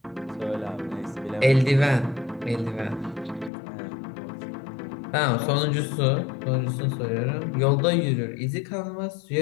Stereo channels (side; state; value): right; drops out; at 3.5 s